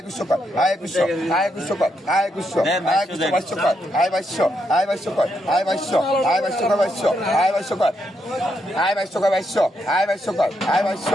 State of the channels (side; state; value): both; normal; correlation 0.80